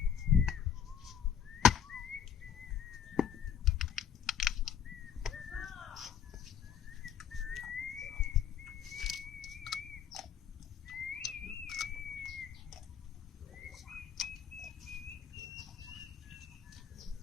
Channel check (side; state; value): right; quieter; 8.4 dB